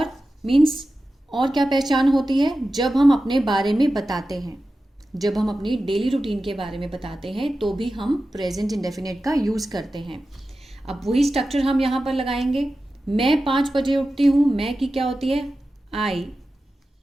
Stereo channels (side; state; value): both; normal; correlation 0.93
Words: मीन्स और क्या पहचान होती है? जब हम अपने बारे में बताते हैं, जब हम अपनी डेली रूटीन के बारे में बताते हैं तो भी हम प्रेजेंट इंडेफिनिट का यूज़ करते हैं। अब वही स्ट्रक्चर हम यहाँ पर लगाएंगे। मैं 5 बजे उठती हूँ, मैं की क्या होती है? आई।